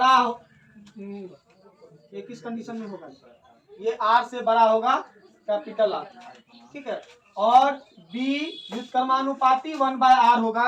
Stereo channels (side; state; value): both; identical; correlation 1.00